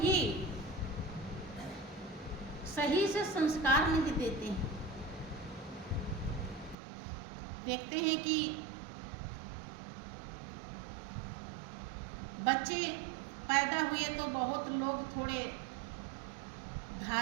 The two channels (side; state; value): left; drops out; at 6.8 s